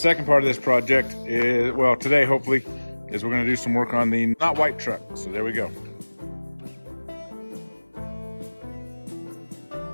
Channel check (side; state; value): both; inverted; correlation -1.00